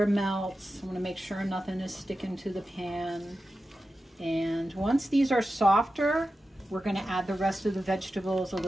melts. I want to make sure nothing is sticking to the pan. And once these are softer, we're going to add the rest of the vegetables, a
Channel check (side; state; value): both; normal; correlation 0.92